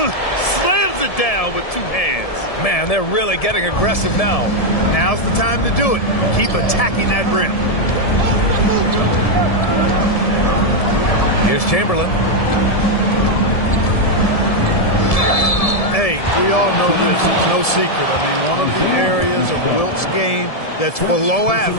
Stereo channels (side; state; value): right; late; 1.7 ms